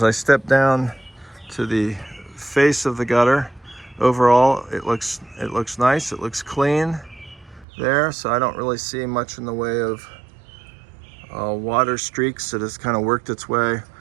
I step down to the face of the gutter, overall it looks nice, it looks clean there, so I don't really see much in the way of water streaks that has kind of worked its way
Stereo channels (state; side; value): drops out; left; at 7.7 s